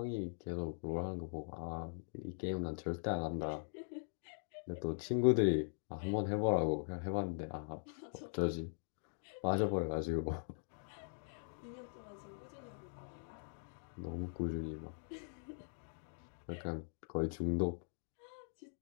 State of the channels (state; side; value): silent; right; digital silence